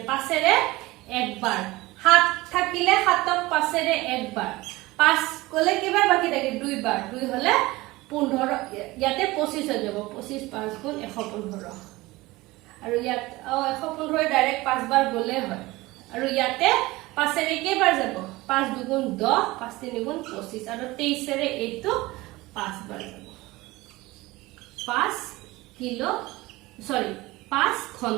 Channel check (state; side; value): quieter; left; 20.2 dB